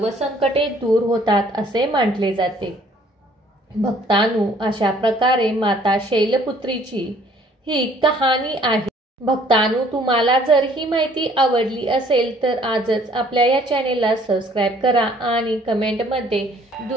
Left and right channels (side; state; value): both; normal; correlation 0.59